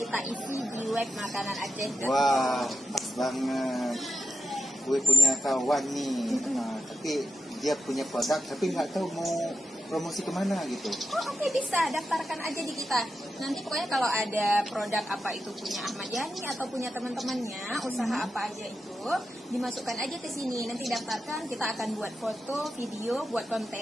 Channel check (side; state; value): both; normal; correlation 0.88